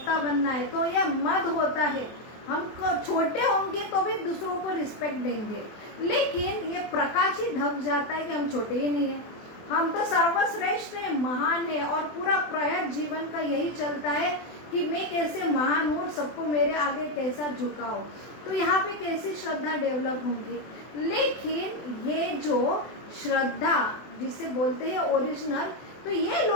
बनना है। तो यह मद होता है, हम छोटे होंगे तो भी दूसरों को रिस्पेक्ट देंगे, लेकिन ये प्रकाश ही ढक जाता है कि हम छोटे ही नहीं है, हम तो सर्वश्रेष्ठ है, महान है। और पूरा प्रयास जीवन का यही चलता है कि मैं कैसे महान हूँ, सबको मेरे आगे कैसा झुकाओ। तो यहाँ पे कैसी श्रद्धा डेवलप होंगी। लेकिन ये जो श्रद्धा जिसे बोलते हैं ओरिजिनल, तो ये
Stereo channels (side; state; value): right; late; 24 ms